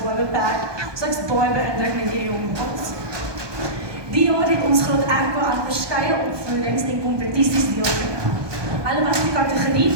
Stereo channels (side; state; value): left; late; 1.2 ms